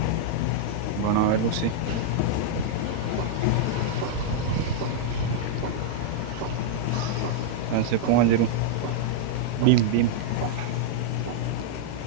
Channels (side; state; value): both; different; correlation -0.01